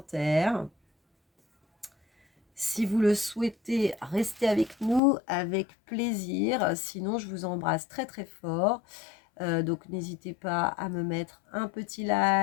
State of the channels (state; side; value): drops out; right; at 5.0 s